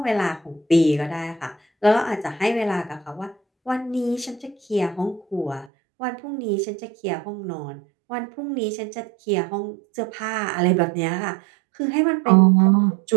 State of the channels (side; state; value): left; drops out; at 5.7 s